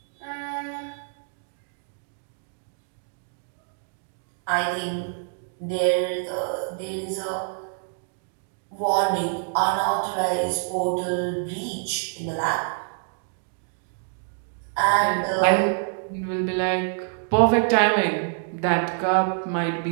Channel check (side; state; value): left; silent; 61 dB below the other